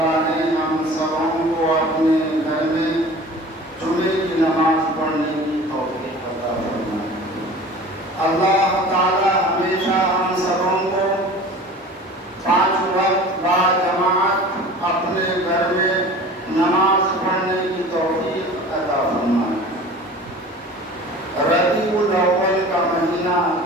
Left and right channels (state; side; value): normal; both; correlation 0.41